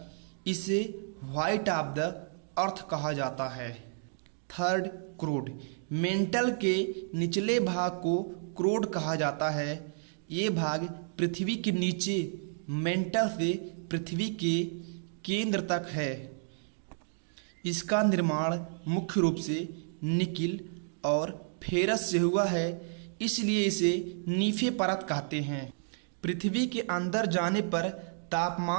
इसे व्हाइट ऑफ द अर्थ कहा जाता है। थर्ड क्रोड, मेंटल के निचले भाग को क्रोड कहा जाता है। ये भाग पृथ्वी के नीचे मेंटल से पृथ्वी के केंद्र तक है। इसका निर्माण मुख्य रूप से निकिल और फेरस से हुआ है, इसलिए इसे नीफे परत कहते हैं। पृथ्वी के अंदर जाने पर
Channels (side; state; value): left; silent; digital silence